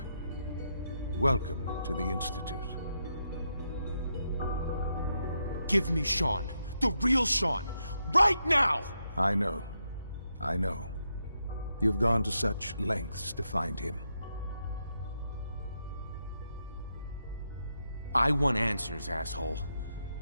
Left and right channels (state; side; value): inverted; both; correlation -0.82